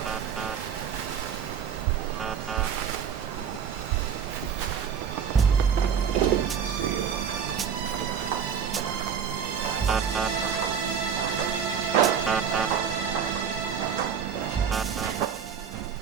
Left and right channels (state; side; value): quieter; left; 7.4 dB